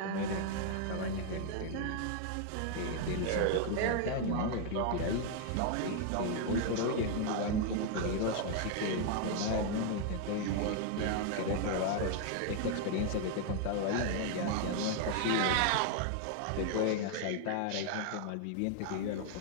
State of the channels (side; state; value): both; different; correlation 0.00